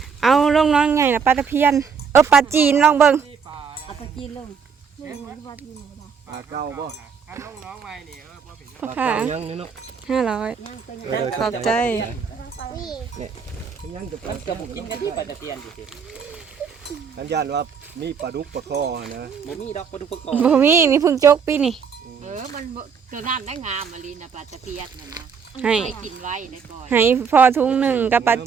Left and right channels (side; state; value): left; quieter; 6.2 dB